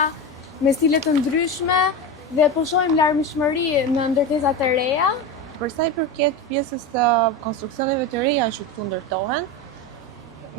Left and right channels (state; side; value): normal; both; correlation 0.21